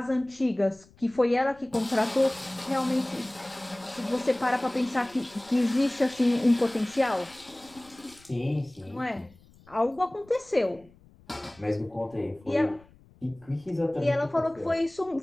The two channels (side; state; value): left; noise; rumble, 27 dB below the sound